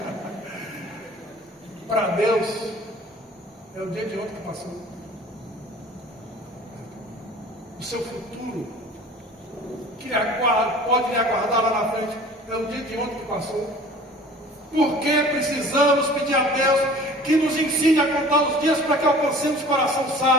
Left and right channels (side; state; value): both; normal; correlation 0.46